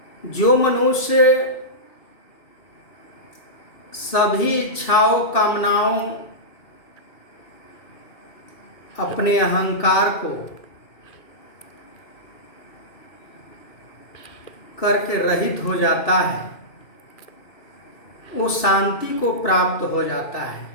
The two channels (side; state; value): right; late; 2.6 ms